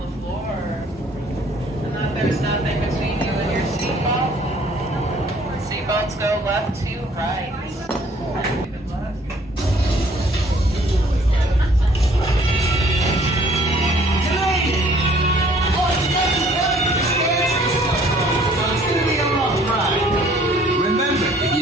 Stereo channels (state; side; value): normal; both; correlation 0.58